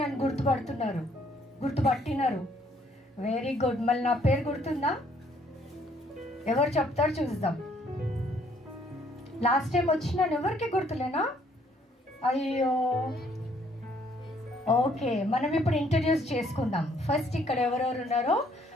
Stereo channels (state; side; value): normal; both; correlation 0.65